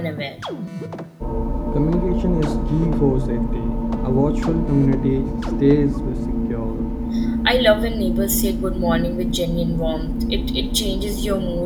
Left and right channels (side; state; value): both; identical; correlation 1.00